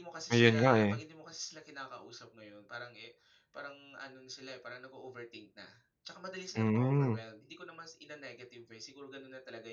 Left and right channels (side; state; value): both; identical; correlation 1.00